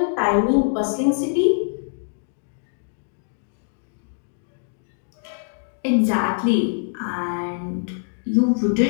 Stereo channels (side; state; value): right; silent; digital silence